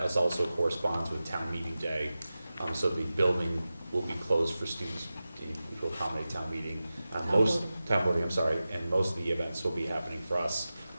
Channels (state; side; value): inverted; both; correlation -0.95